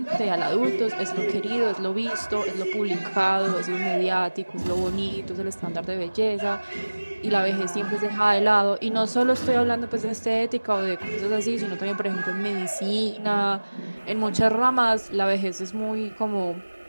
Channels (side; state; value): both; inverted; correlation -1.00